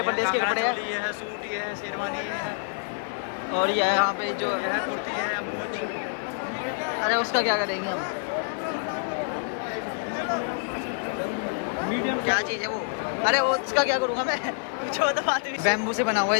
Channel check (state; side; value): silent; right; digital silence